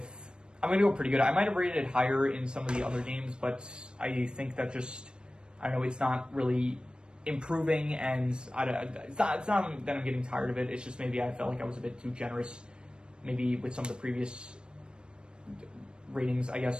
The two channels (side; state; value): left; late; 0.053 ms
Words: I'm going to go pretty good. I might have rated it higher in some of the other games, but I think that I don't know, it's not really improving, and it's not that I'm getting tired of it. It's just maybe I felt like I was a bit too generous, maybe with some of the previous ratings, I